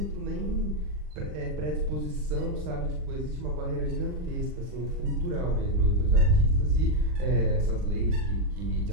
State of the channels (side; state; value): left; late; 40 ms